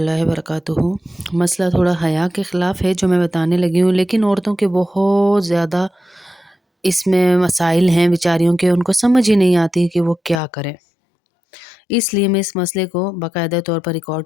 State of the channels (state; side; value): drops out; right; at 10.4 s